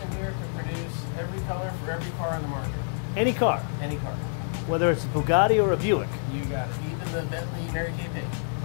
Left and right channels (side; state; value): right; silent; 60 dB below the other